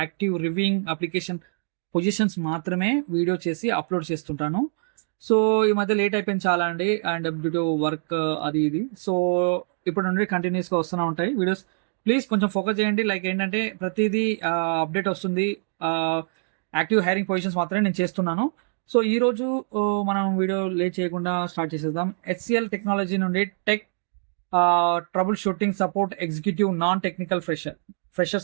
active reviewing application positions మాత్రమే వీడియో చేసి అప్లోడ్ చేస్తుంటాను. సో ఈ మధ్య లేట్ అయిపోయింది చాలా అండి, అండ్ డ్యూ టు వర్క్ అది ఇది. సో ఇప్పుడు నుండి కంటిన్యూస్గా వస్తూనే ఉంటాయి వీడియోస్. ప్లీజ్ కొంచెం ఫోకస్ చేయండి. లైక్ ఏంటంటే ప్రతిదీ అప్డేట్ వస్తుంది. యాక్టివ్ హైరింగ్ పొజిషన్స్ మాత్రమే నేను చేస్తున్నాను. సో ఈరోజు మనం వీడియో లేట్ చేయకుండా స్టార్ట్ చేసేద్దాం. HCL టెక్నాలజీ నుండి tech trouble shooting support executive non technical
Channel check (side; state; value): left; silent; digital silence